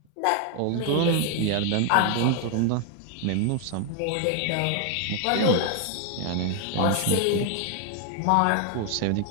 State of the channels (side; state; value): both; different; correlation 0.00